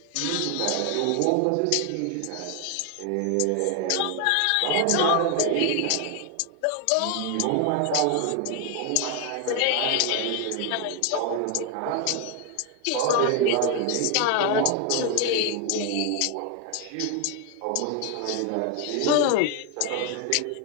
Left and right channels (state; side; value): different; both; correlation 0.01